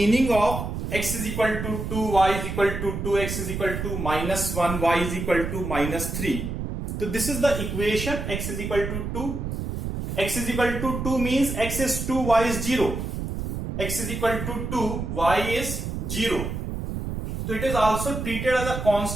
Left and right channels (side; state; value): right; noise; rumble, 4 dB below the sound